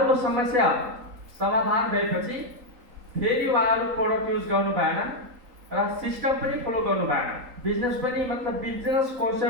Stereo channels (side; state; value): left; late; 3.8 ms